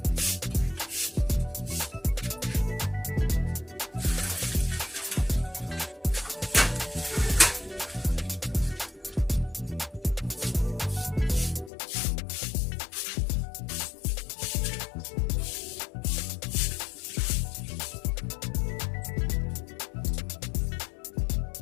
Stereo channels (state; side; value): drops out; right; at 11.7 s